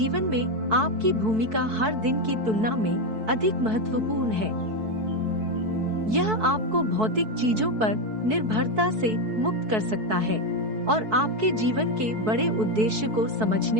में आपकी भूमिका हर दिन की तुलना में अधिक महत्वपूर्ण है। यह आपको भौतिक चीजों पर निर्भरता से मुक्त कर सकता है और आपके जीवन के बड़े उद्देश्य को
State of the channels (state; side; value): late; left; 4.6 ms